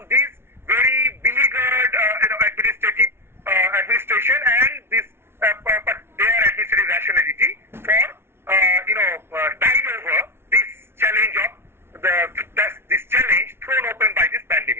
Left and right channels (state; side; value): late; left; 0.12 ms